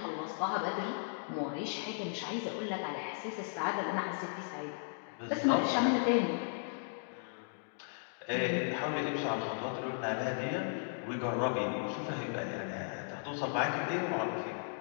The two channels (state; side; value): silent; right; digital silence